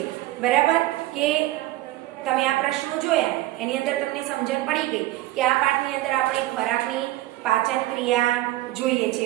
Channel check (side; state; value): left; quieter; 16.3 dB